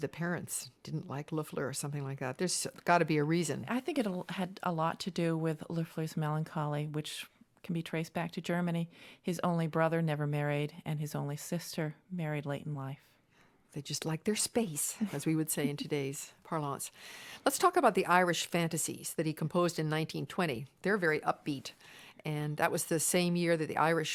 parents didn't like Loeffler or something like that. There's got to be a reason. I think it had a lot to do with Loeffler's melancholy, which can be traced back to Germany. His only brother never married, and his only sister married late in life. They just like their space, as we would say in today's parlance. Let's talk about the Irish Fantasies that he composed in 1920. They're very upbeat, and that was the same year that the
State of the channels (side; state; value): both; identical; correlation 1.00